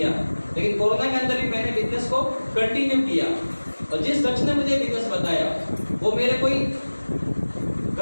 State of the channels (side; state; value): both; inverted; correlation -1.00